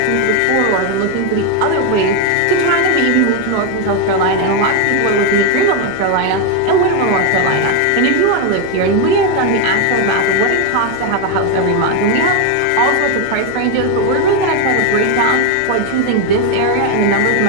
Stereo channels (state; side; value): different; both; correlation 0.02